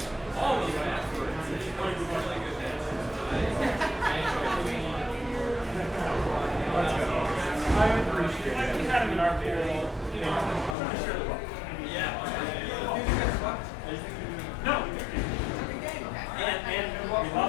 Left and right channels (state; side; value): drops out; right; at 10.8 s